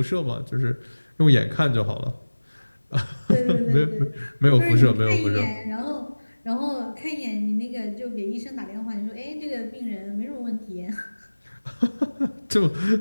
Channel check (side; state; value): both; inverted; correlation -1.00